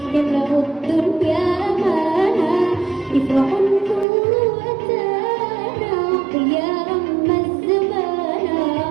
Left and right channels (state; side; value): drops out; left; at 4.0 s